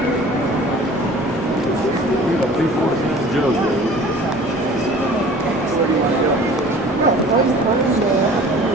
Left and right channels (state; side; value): normal; both; correlation 0.46